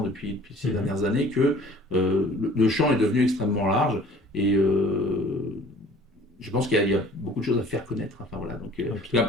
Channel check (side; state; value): both; normal; correlation 0.50